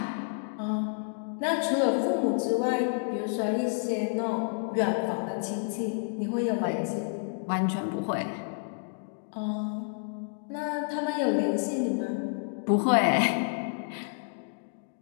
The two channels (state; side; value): silent; right; digital silence